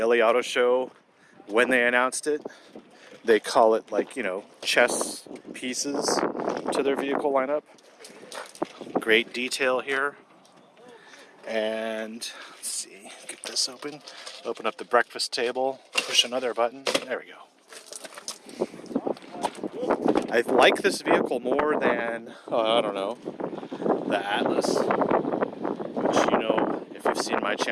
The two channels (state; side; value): identical; both; correlation 1.00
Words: LA Auto Show when they announced it. They call it, like, you know, chess pieces to their vehicle lineup. Great detail here. And, let's see, get this open. Open up the breakfast table, push another button. There we go. I like this vehicle more than, I don't know, the Atlas, which, you know, if you've seen my